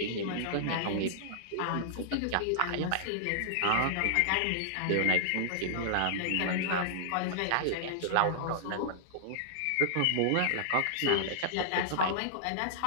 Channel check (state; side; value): different; both; correlation -0.01